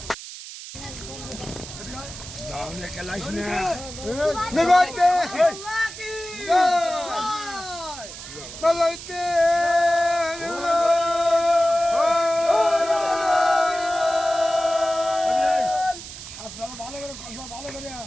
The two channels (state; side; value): noise; right; hiss, 12 dB below the sound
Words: নিগতে বলতে আপনারা ভালো করে ভালো করে